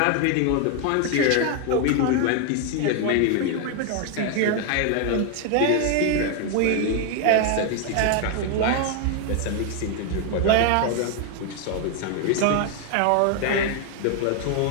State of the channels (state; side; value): different; both; correlation 0.01